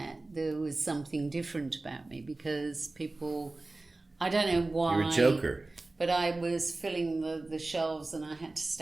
there was something different about me because people, I don't know why. You're a joker. But I was filling the shelves and I had to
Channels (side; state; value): left; quieter; 3.1 dB